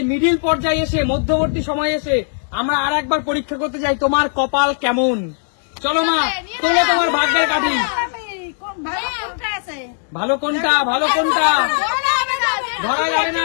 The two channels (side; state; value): right; silent; digital silence